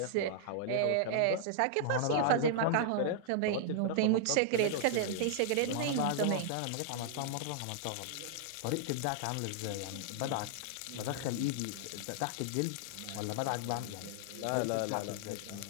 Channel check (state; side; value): different; both; correlation -0.01